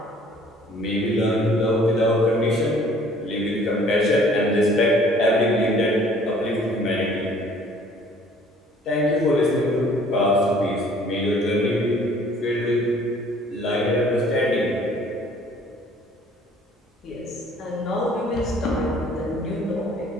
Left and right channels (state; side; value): normal; both; correlation 0.55